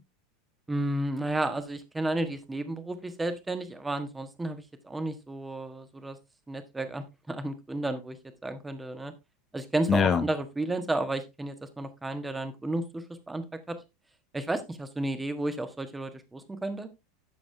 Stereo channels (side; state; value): both; normal; correlation 0.84